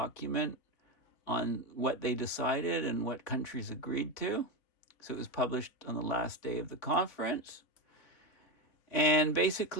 on what they decided and what countries agreed to. So it was published on the last day of the conference. And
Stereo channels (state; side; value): late; right; 3.5 ms